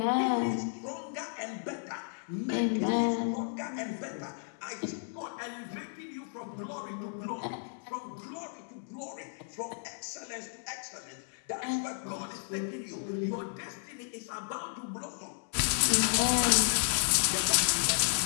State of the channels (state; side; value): silent; right; digital silence